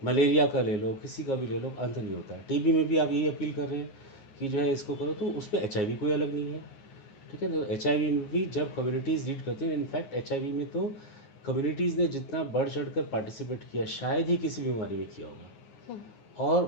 का ले लो, किसी का भी ले लो, अंत नहीं होता है। टीबी में भी आप यही अपील कर रहे हैं कि जो है इसको करो, तो उसमें एचआईवी कोई अलग नहीं है, ठीक है? तो एचआईवी में भी जब कम्युनिटीज़ लीड करती हैं, इनफैक्ट एचआईवी में तो कम्युनिटीज़ ने जितना बढ़ चढ़ कर पार्टिसिपेट किया शायद ही किसी बीमारी में किया होगा। और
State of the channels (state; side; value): late; right; 9.5 ms